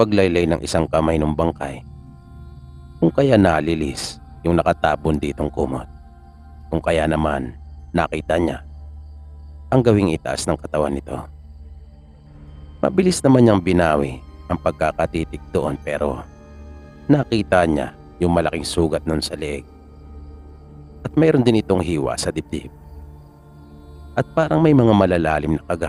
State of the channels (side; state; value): both; identical; correlation 1.00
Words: ng isang kamay ng bangkay, kung kaya nalilis yung nakatabon ditong kumot, kung kaya naman nakita niya ang gawing itaas ng katawan nito. Mabilis naman niyang binawi ang pagkakatitig doon pero nakita niya yung malaking sugat nun sa leeg. At mayroon din itong hiwa sa dibdib. At parang may mga malalalim na